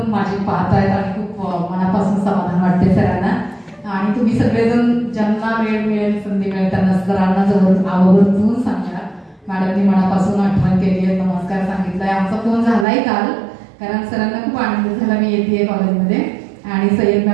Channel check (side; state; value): left; drops out; at 12.9 s